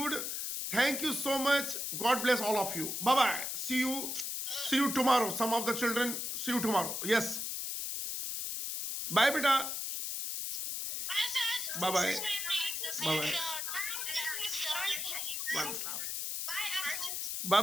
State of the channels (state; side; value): noise; left; hiss, 3 dB below the sound